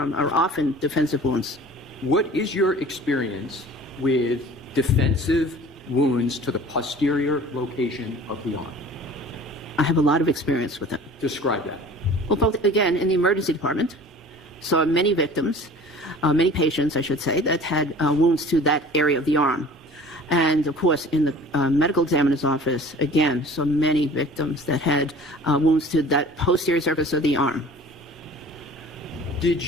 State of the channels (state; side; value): normal; both; correlation 0.45